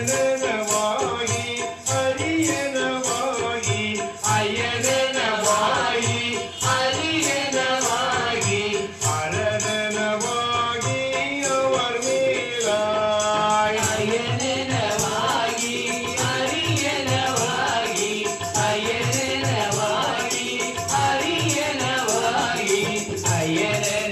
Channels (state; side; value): identical; both; correlation 1.00